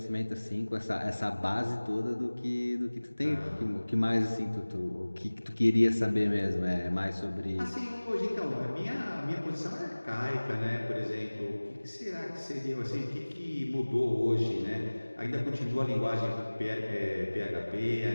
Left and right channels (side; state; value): both; inverted; correlation -1.00